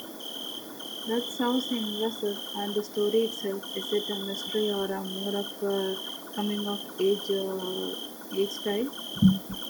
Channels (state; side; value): identical; both; correlation 1.00